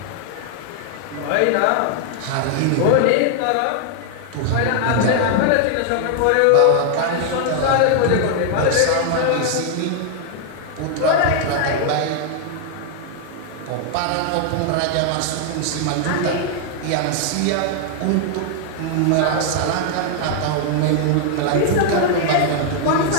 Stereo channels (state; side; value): different; both; correlation 0.00